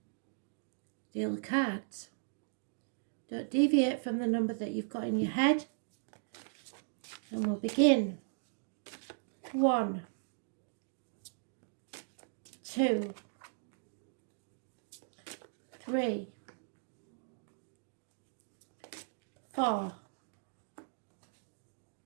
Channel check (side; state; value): left; silent; digital silence